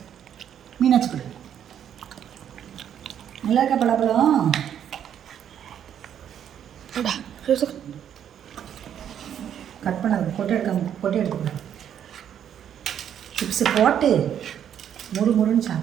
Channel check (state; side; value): quieter; left; 9.4 dB